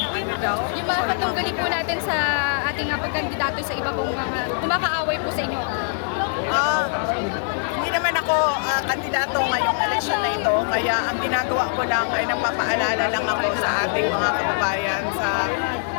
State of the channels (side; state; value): right; silent; digital silence